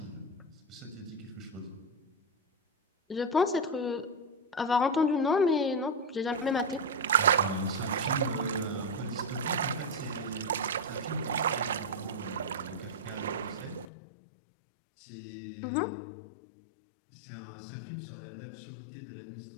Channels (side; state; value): right; drops out; at 13.9 s